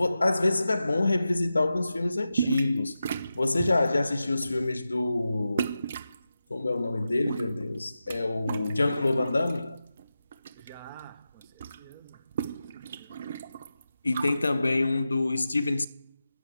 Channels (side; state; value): both; inverted; correlation -0.92